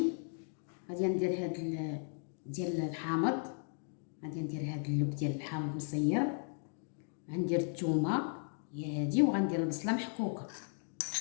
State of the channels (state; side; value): silent; right; 54 dB below the other